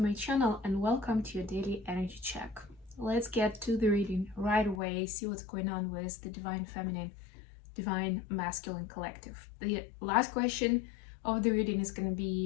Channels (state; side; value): drops out; right; at 4.8 s